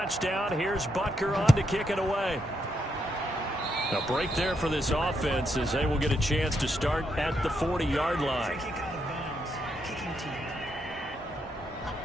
here's Butker on to kick it away. A break there for this offense, as they will get a chance to start at the 40-yard line.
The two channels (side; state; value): both; normal; correlation 0.79